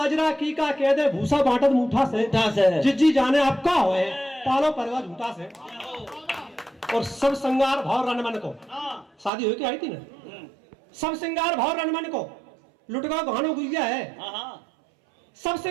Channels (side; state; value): left; drops out; at 9.3 s